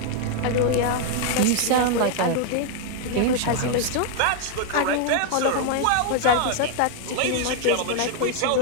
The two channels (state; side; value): different; both; correlation 0.00